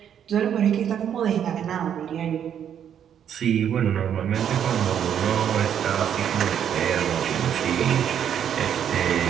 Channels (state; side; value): quieter; left; 9.1 dB